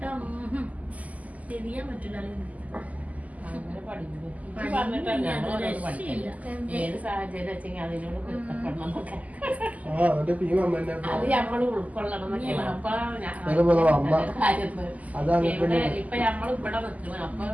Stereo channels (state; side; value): late; left; 0.075 ms